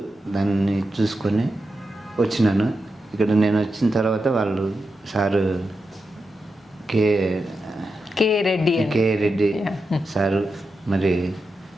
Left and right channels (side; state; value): both; normal; correlation 0.89